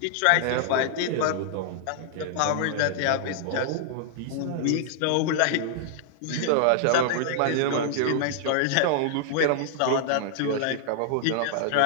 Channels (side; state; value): both; different; correlation -0.01